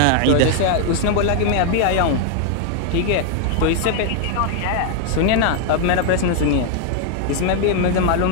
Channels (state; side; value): different; both; correlation 0.00